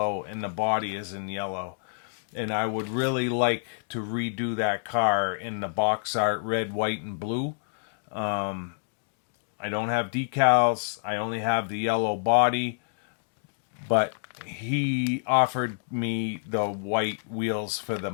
and the body is in yellow. And I would really like to redo that car in the box art red, white, and blue. I don't have decals. I only have the yellow body. But he offered me the white wheels for the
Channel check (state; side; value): silent; right; digital silence